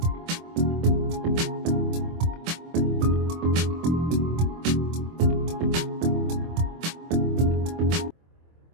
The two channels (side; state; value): left; late; 24 ms